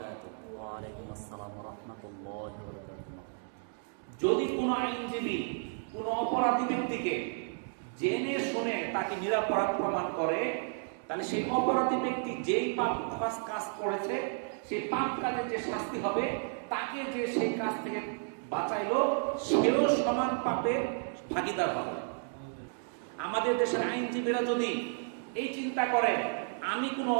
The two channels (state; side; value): silent; left; 56 dB below the other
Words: ওয়ালাইকুম আসসালাম ওয়া রাহমাতুল্লাহি ওয়া বারাকাতুহু। যদি কোনো আইনজীবী কোনো অপরাধী ব্যক্তিকে জেনে শুনে তাকে নিরপরাধ প্রমাণ করে, তাহলে সেই অপরাধী ব্যক্তি যেই পাপ কাজ করেছে সেই পাপ কাজের যে শাস্তি হবে, তাকে যে সেই কাজ থেকে বাঁচাইলো সেও সমান পাপের ভাগীদার হবে। আমাদের দেশের আইনজীবীরা যদি এই চিন্তা করে আমি কোনো